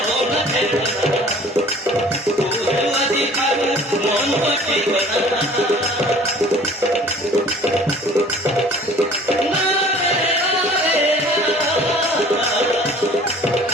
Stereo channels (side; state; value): both; normal; correlation 0.50